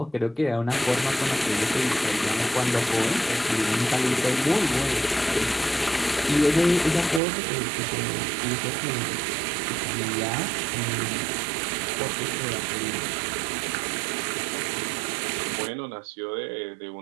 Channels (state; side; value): drops out; left; at 7.2 s